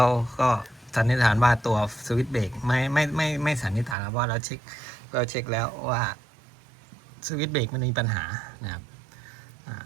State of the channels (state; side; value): drops out; left; at 4.0 s